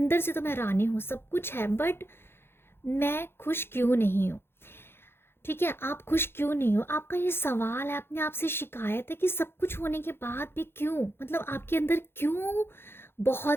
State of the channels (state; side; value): late; right; 0.11 ms